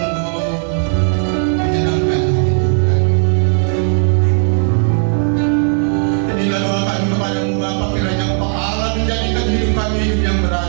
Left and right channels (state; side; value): silent; left; 58 dB below the other